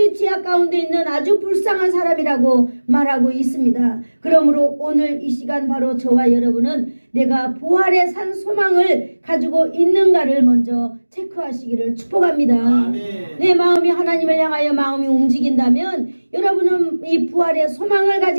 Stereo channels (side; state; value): both; inverted; correlation -1.00